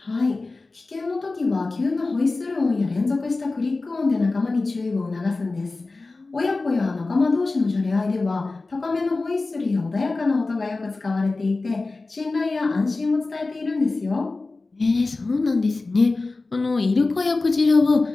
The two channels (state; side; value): quieter; right; 3.5 dB